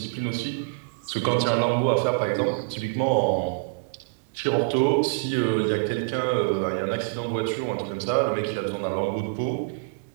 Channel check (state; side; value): quieter; left; 33.7 dB